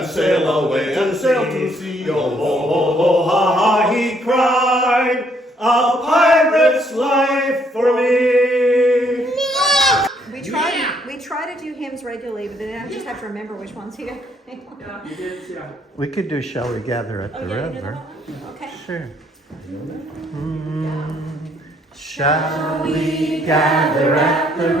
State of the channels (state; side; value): normal; both; correlation 0.68